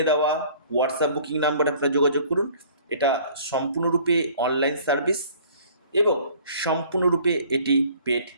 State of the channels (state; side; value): inverted; both; correlation -0.53